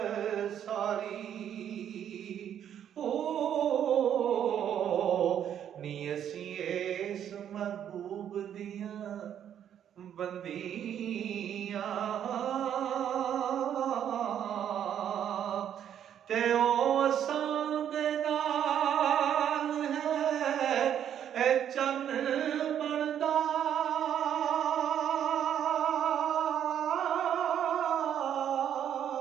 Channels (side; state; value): left; quieter; 9.6 dB